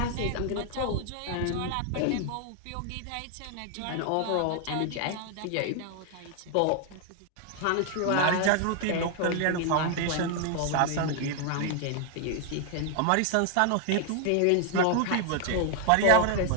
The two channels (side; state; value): both; different; correlation 0.00